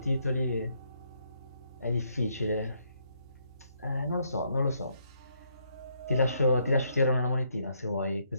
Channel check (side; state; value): both; inverted; correlation -0.73